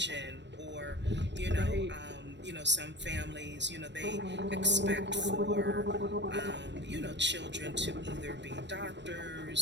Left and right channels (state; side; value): late; left; 0.52 ms